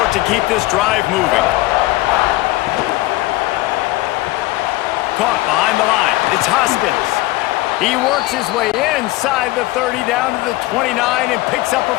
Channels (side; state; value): right; quieter; 18.8 dB